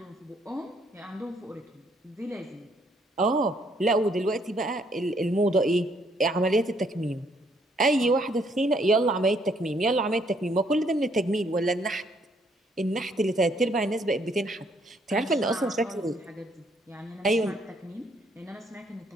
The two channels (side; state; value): both; normal; correlation 0.68